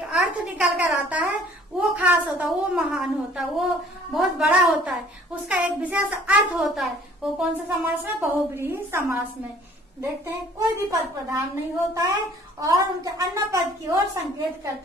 अर्थ निकल कर आता है, वो खास होता है, वो महान होता है, वो बहुत बड़ा होता है, उसका एक विशेष अर्थ होता है। वो कौन सा समास में, बहुव्रीहि समास में। देखते हैं, कोई भी पद प्रधान नहीं होता है और उनके अन्य पद की ओर संकेत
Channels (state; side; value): normal; both; correlation 0.55